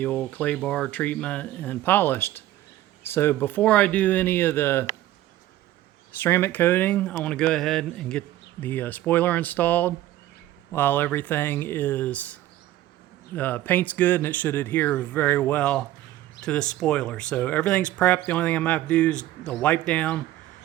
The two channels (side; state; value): left; quieter; 14.5 dB